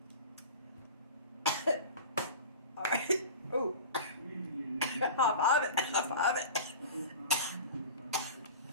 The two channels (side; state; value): both; inverted; correlation -0.34